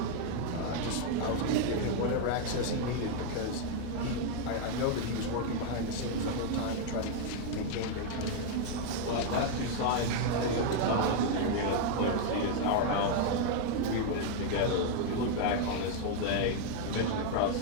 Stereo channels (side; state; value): both; different; correlation 0.00